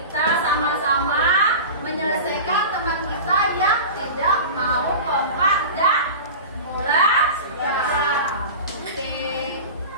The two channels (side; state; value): both; inverted; correlation -0.32